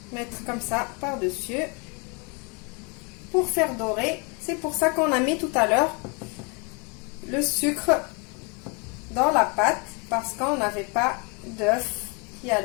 mettre comme ça par-dessus pour faire dorer. C'est pour ça qu'on a mis tout à l'heure le sucre dans la pâte, parce qu'on n'avait pas d'œuf qui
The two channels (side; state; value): right; quieter; 32.6 dB